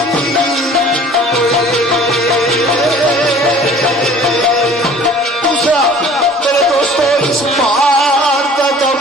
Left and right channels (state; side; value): normal; both; correlation 0.48